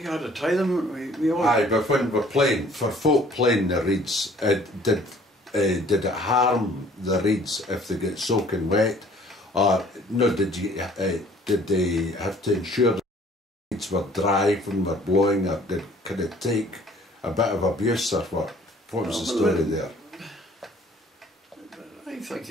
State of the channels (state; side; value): normal; both; correlation 0.55